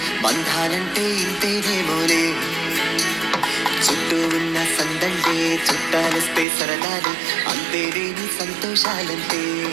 బంధాలంటే ఇంతేనేమోలే చుట్టూ ఉన్న సందళ్ళే చుట్టాలొస్తే సరదాలే అంతేలేని సంతోషాలంటే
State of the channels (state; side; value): drops out; left; at 6.5 s